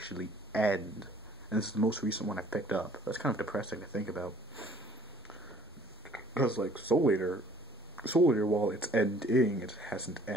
end. And this is the most recent one I picked up. That's kind of depressing to think about. Because, Soul Eater, while it's ending, it hasn't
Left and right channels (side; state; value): both; normal; correlation 0.57